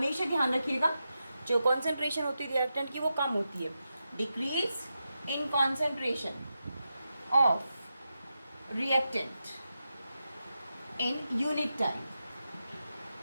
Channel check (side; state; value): both; inverted; correlation -0.89